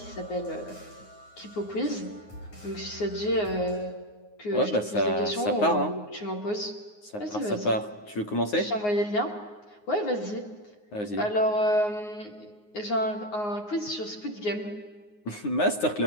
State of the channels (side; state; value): right; late; 9.6 ms